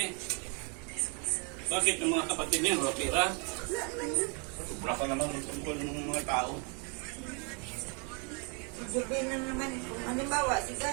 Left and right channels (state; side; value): quieter; left; 35.6 dB